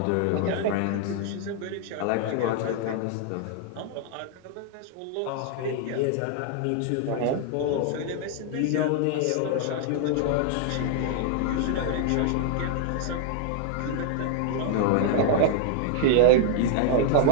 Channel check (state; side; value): different; both; correlation 0.00